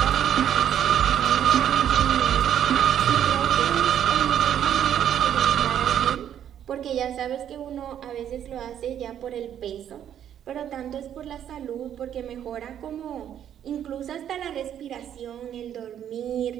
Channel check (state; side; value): quieter; left; 9.9 dB